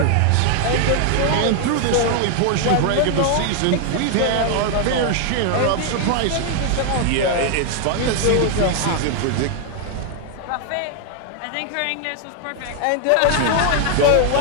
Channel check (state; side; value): different; both; correlation 0.00